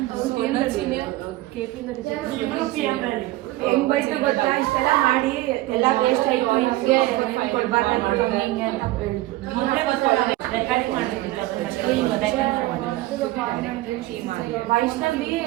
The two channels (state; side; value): quieter; left; 17.8 dB